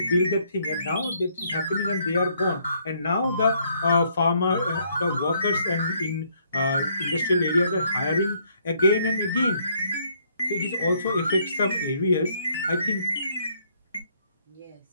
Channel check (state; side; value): inverted; both; correlation -0.69